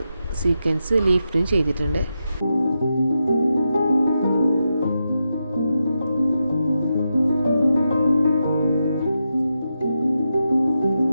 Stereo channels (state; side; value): inverted; both; correlation -0.87